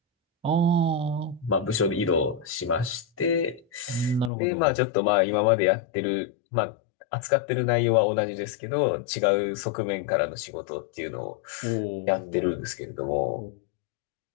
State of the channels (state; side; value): drops out; right; at 4.3 s